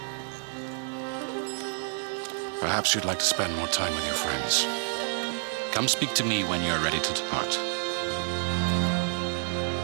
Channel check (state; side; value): silent; left; digital silence